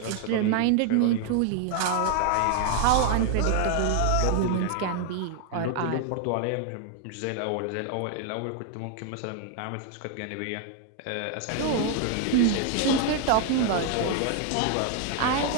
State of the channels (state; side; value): different; both; correlation 0.00